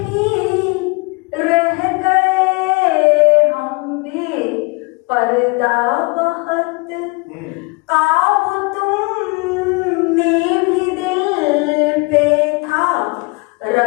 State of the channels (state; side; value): quieter; right; 29.7 dB